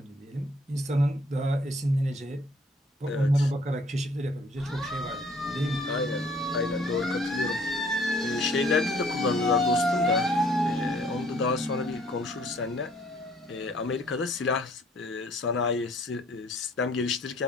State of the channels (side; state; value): both; normal; correlation 0.60